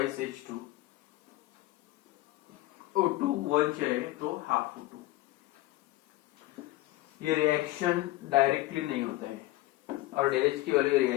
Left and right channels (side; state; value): right; quieter; 17.5 dB